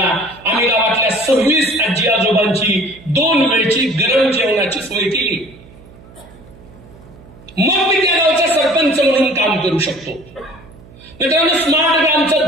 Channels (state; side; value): noise; right; hum, 23 dB below the sound